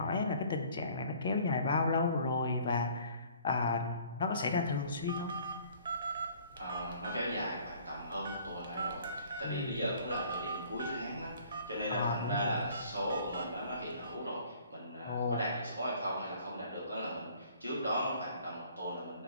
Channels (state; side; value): inverted; both; correlation -0.55